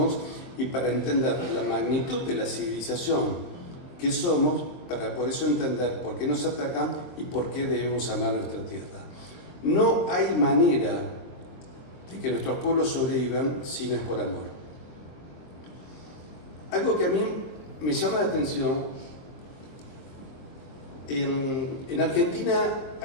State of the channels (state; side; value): late; right; 23 ms